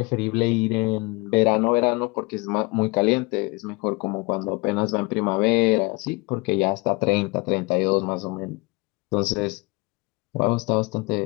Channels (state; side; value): quieter; right; 26.4 dB